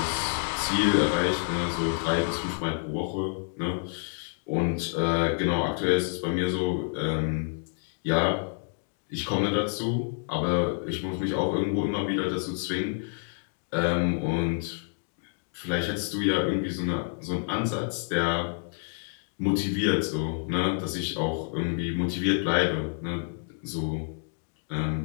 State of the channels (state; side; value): silent; right; 59 dB below the other